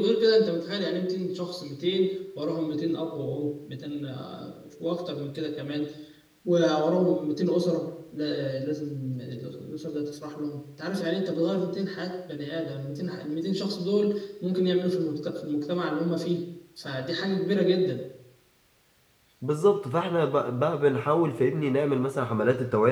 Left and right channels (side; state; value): both; identical; correlation 1.00